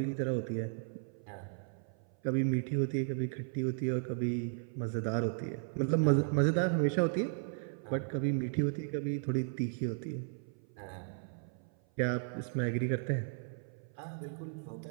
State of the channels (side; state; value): left; silent; 54 dB below the other